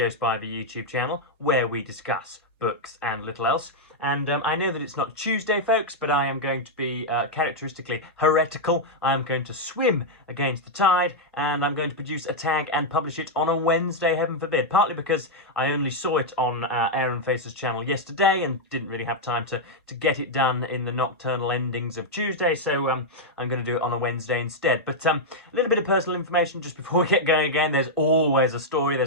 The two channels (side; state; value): both; normal; correlation -0.02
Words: Spivey YouTube channel, where we discuss books and little else. And I know that it's not Tuesday, folks, but I am going to be characteristically heretical. I am going to swim against the tide, and I'm going to produce a tag and publish it on a Wednesday, heaven forbid. Partly because I only saw it on Aaron Facer's channel yesterday and didn't really have time to get it done in the nocturnal endings of Tuesday, so I'm going to do it on a Wednesday instead. But a little bit of personal information just before we get going again. There's always a story,